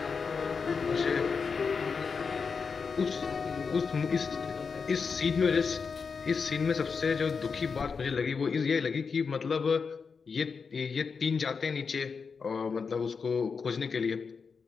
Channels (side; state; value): right; quieter; 5.4 dB